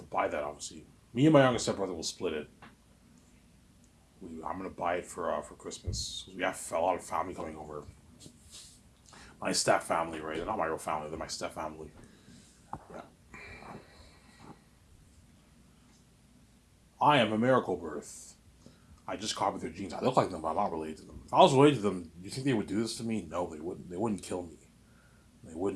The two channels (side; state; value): both; identical; correlation 1.00